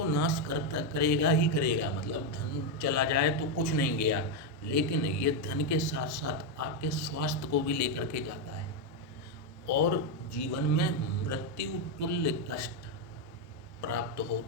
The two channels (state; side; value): normal; both; correlation 0.04